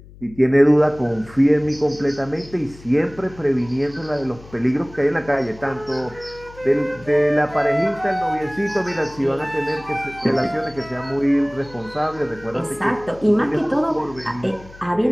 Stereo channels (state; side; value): noise; left; hum, 20 dB below the sound